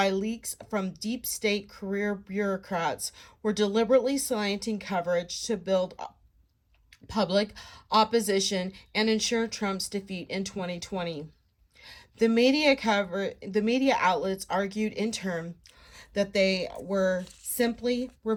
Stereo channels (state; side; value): identical; both; correlation 1.00